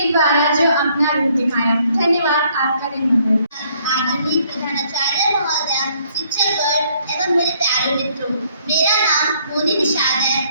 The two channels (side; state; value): both; inverted; correlation -0.66